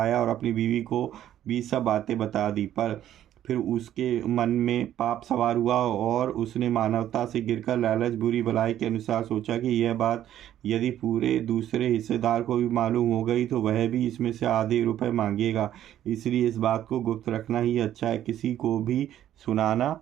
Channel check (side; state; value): left; quieter; 11.7 dB